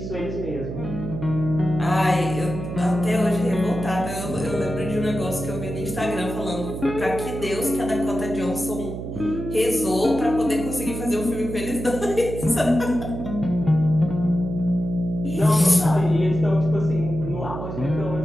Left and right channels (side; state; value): right; noise; hum, 7 dB below the sound